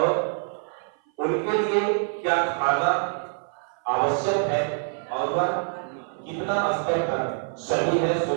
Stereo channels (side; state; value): left; silent; 56 dB below the other